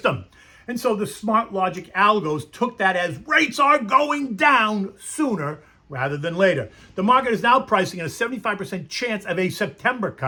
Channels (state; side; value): identical; both; correlation 1.00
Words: And so the smart logic algos took that as rates are going down sooner rather than later. The market is now pricing in a 75% chance of a September